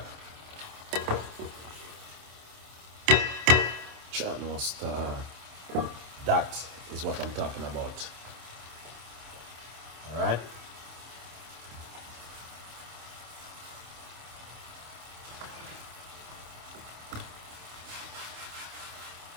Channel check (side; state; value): left; late; 27 ms